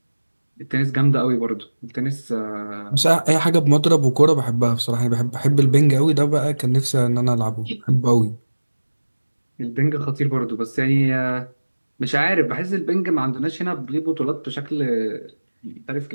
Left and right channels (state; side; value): inverted; both; correlation -1.00